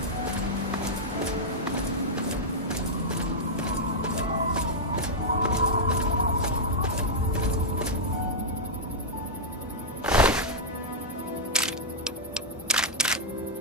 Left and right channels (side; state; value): both; normal; correlation -0.05